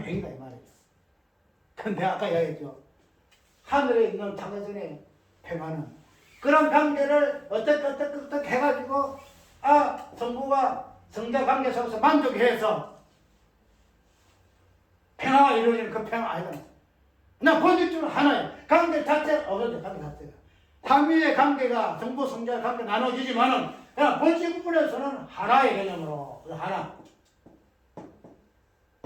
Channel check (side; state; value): both; identical; correlation 1.00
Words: 행위다 이 말이죠. 근데 아까 이야기했죠. 하늘에 있는 창조전의 평화는 그런 관계를 어떻게 해가지고 성부와 성자 관계 속에서 만족해서 평화가 이루어지는 그 평화 아니다. 나 본질적으로 하나예요. 관계 자체가 없어져. 관계 자체가 삼위의 관계가 성부 성자 관계 나눠지지만은 그냥 본질 부분에서는 하나의 개념으로